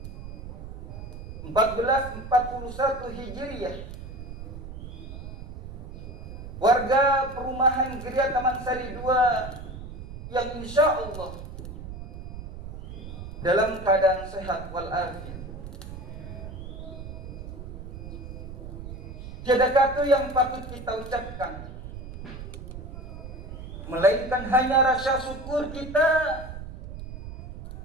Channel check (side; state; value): right; noise; rumble, 10 dB below the sound